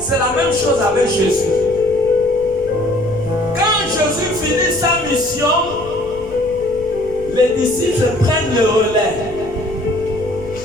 la même chose avec Jésus. Quand Jésus finit sa mission, les disciples prennent le relais.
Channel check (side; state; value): left; noise; rumble, 17 dB below the sound